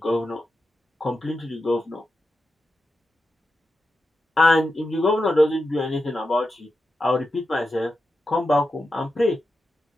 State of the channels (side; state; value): both; normal; correlation 0.89